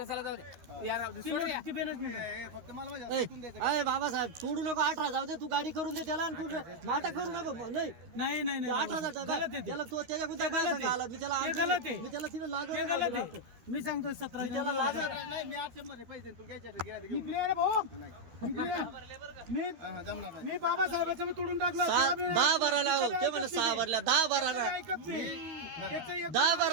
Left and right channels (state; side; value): late; left; 13 ms